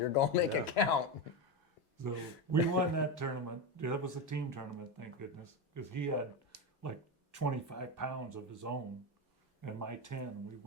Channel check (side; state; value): both; normal; correlation 0.14